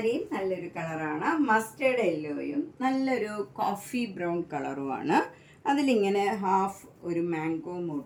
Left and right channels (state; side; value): identical; both; correlation 1.00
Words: നല്ലൊരു കളറാണ്. മസ്റ്റേർഡ് യെല്ലോയും നല്ലൊരു കോഫി ബ്രൗൺ കളറുമാണ്. അതിലിങ്ങനെ ഹാഫ് ഒരു മാംഗോ